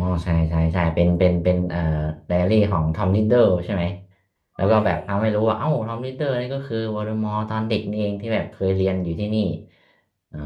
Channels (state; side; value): identical; both; correlation 1.00